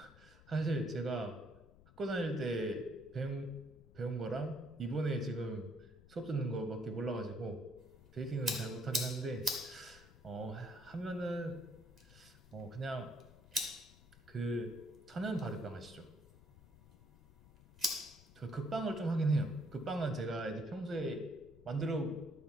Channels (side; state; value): left; noise; rumble, 22 dB below the sound